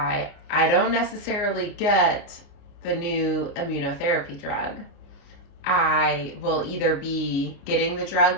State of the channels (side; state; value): right; late; 29 ms